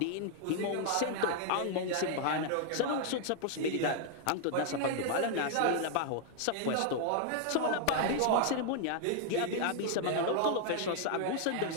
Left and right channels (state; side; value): different; both; correlation 0.00